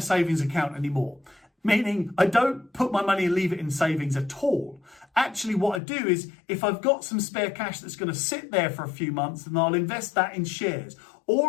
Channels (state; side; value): drops out; right; at 5.8 s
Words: savings account anymore. Meaning I don't put my money and leave it in savings at all. Actually, what I do is if I've got some spare cash that's going to sit there for a few months, then I'll invest that in shares.